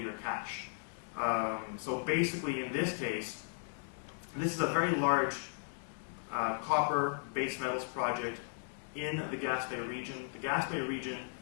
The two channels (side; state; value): right; silent; digital silence